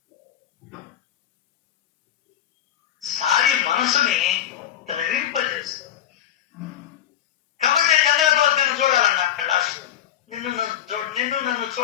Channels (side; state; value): right; quieter; 10.9 dB